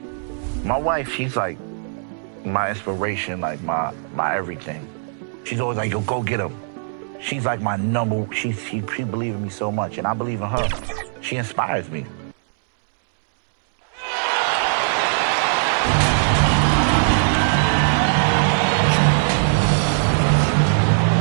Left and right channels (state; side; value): silent; left; digital silence